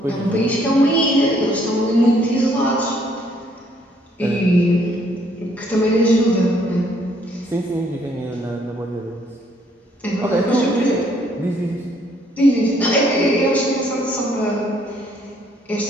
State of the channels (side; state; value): both; normal; correlation 0.66